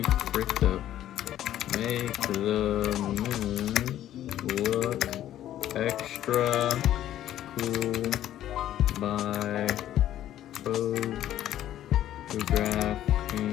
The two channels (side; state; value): right; quieter; 12.3 dB